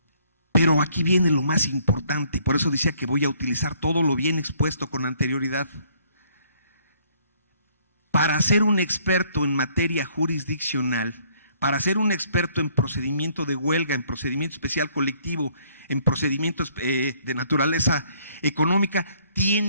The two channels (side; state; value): both; inverted; correlation -0.63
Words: Pero aquí viene lo más importante, por eso decía que voy a utilizar todo lo bien expuesto con anterioridad. Para ser un experto en materia jurisdiccional, para ser un experto en procedimiento de huelga, en procedimiento especial colectivo, en procedimientos de naturaleza económica,